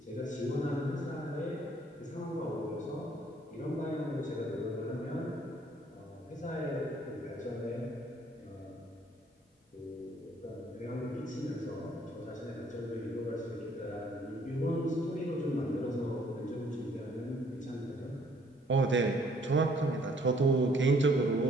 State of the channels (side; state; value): both; normal; correlation 0.62